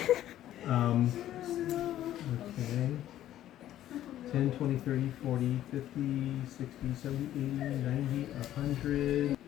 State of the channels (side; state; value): right; quieter; 12.7 dB